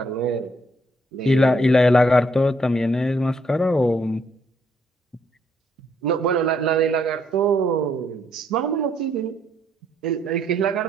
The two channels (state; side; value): normal; both; correlation 0.71